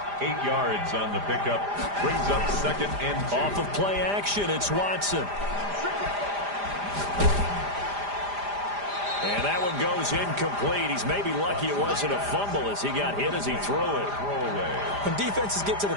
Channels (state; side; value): late; left; 5.0 ms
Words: 8 yards on the pickup. Brings up 2nd and 2. Off of play action, it's Watson. And that one goes incomplete. He's maybe lucky it wasn't a fumble as he got hit as he threw it. When defenses get to the